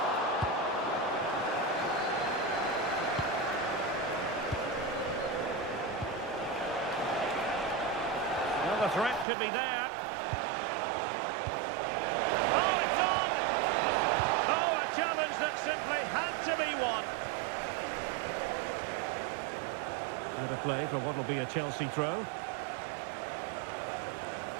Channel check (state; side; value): drops out; left; at 9.2 s